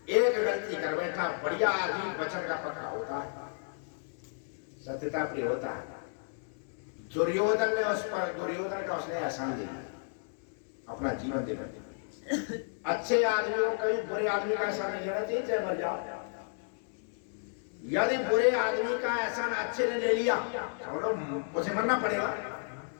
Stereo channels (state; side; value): silent; right; digital silence